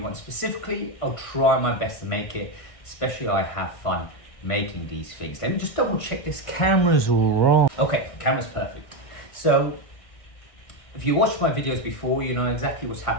specifically, I'll try my best to make it, especially I have fun making these things. Let me just double check this camera's all wrong. Okay, camera's perfect. So if you watched my videos before, you know exactly what's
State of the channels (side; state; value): right; late; 1.6 ms